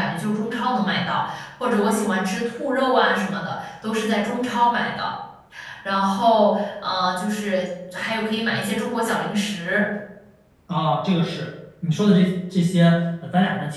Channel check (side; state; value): both; identical; correlation 1.00